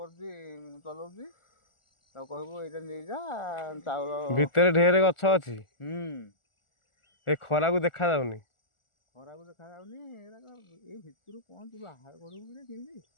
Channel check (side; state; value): right; late; 1.4 ms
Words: ଚଲାଉଛି ତାକୁ କହିବୁ ଏଇଟା ନେଇଯା ଚାଉଳ ଭିତରେ ଢେର ଗଛ ଅଛି ଏ ଖରାକୁ ଦେଖା ଯାଉନି ଏଇ ଭିତରୁ କଣ ତୁ ବାହାର କରିବୁ କି କେମିତି